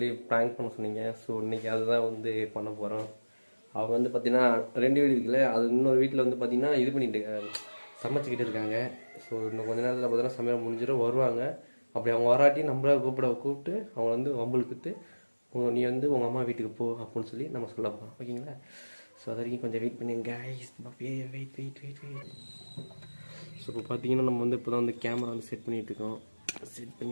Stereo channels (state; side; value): inverted; both; correlation -1.00